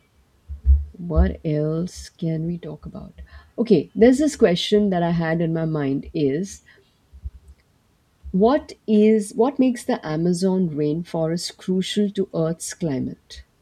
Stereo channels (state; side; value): identical; both; correlation 1.00